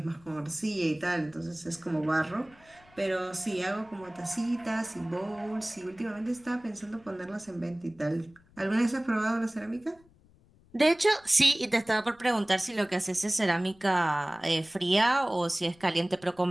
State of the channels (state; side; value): noise; left; rumble, 29 dB below the sound